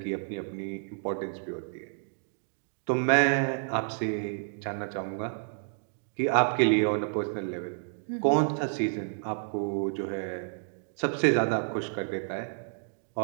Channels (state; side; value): silent; left; digital silence